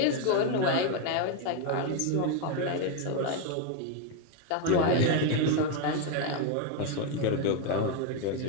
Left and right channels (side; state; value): both; different; correlation 0.01